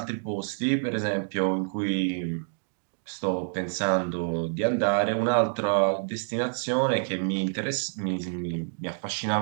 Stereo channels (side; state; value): left; silent; digital silence